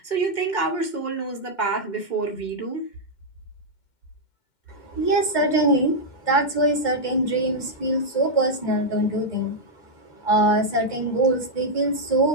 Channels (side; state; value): right; late; 2.1 ms